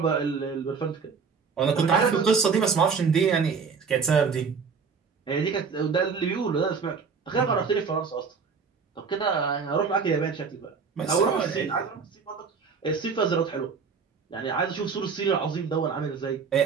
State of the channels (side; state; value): left; quieter; 5.6 dB